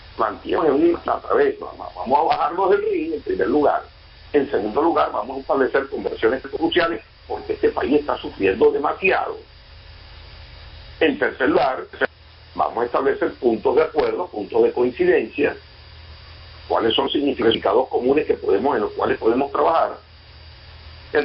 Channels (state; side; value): identical; both; correlation 1.00